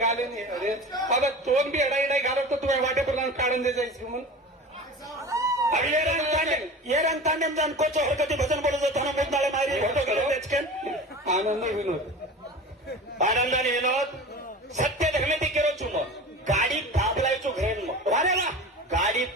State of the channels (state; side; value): normal; both; correlation 0.35